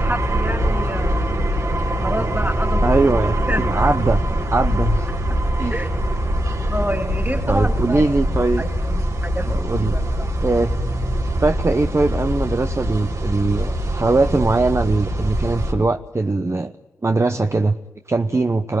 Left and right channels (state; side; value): normal; both; correlation 0.88